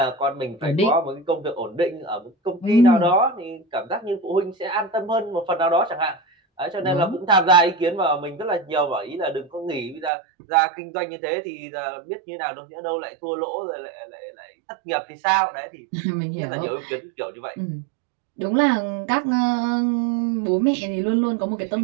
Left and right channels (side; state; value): left; drops out; at 10.1 s